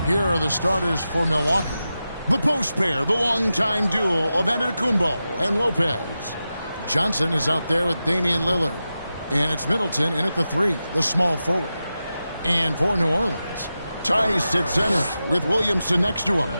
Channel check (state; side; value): inverted; both; correlation -0.92